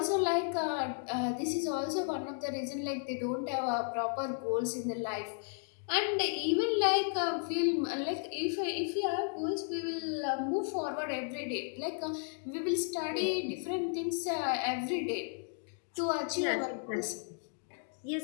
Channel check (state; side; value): silent; right; 55 dB below the other